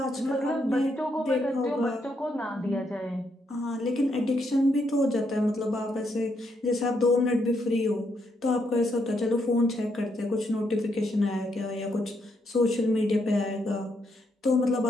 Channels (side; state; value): both; normal; correlation 0.77